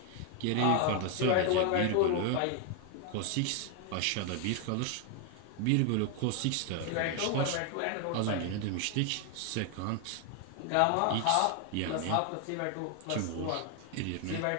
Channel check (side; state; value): both; different; correlation 0.01